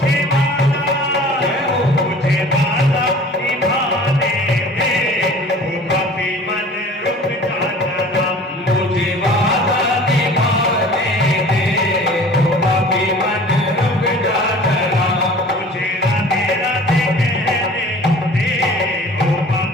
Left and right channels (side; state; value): both; normal; correlation 0.45